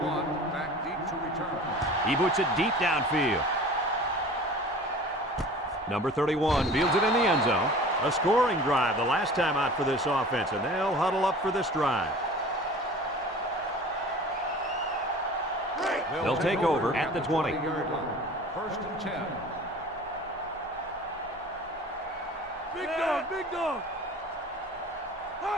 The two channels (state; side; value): normal; both; correlation 0.42